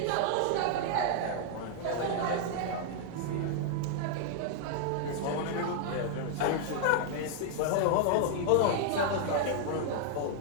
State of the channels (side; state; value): both; different; correlation 0.00